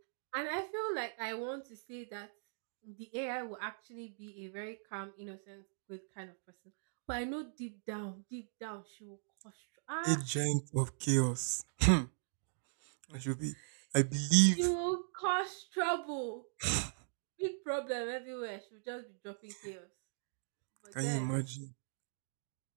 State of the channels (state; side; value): silent; left; digital silence